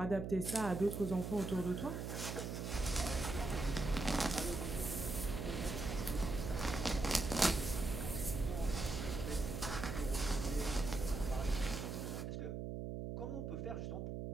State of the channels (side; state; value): right; noise; hum, 4 dB below the sound